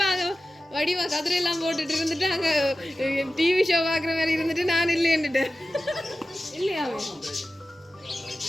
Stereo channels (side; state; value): both; normal; correlation 0.94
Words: அங்க வடிவா கதிரையெல்லாம் போட்டுட்டு இருந்துட்டு அங்க டிவி ஷோ பாக்குற மாதிரி இருந்துட்டு நான் இல்லையன்னுட்டேன். இல்லையா?